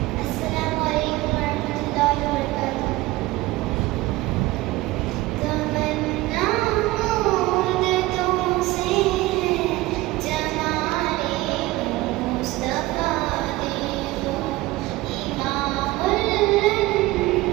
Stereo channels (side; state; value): left; quieter; 18.9 dB